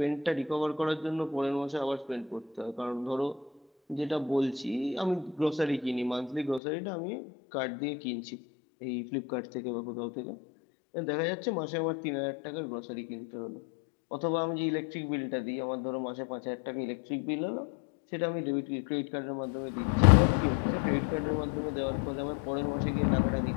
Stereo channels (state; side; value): drops out; right; at 6.6 s